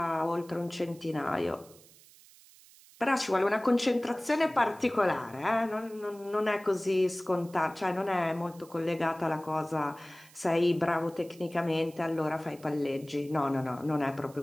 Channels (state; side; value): noise; right; hiss, 24 dB below the sound